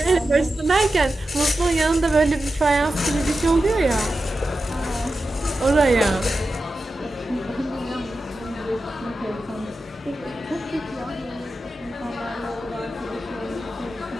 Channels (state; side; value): normal; both; correlation 0.92